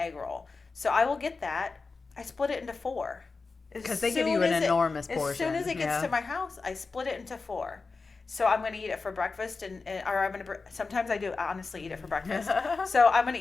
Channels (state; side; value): quieter; right; 4.2 dB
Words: egg roll. So I will get that. I split it into 4. Because they give you an enormous portion. As soon as it gets to my house, I split it into 4. So I'm going to eat it for breakfast, or I'm going to. Sometimes I do honestly eat it for breakfast. So I'm going